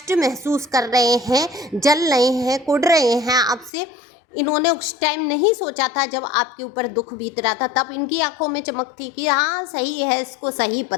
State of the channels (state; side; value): drops out; right; at 3.7 s